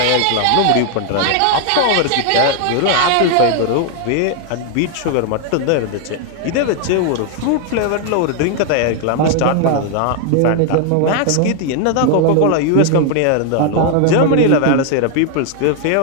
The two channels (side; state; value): both; different; correlation 0.00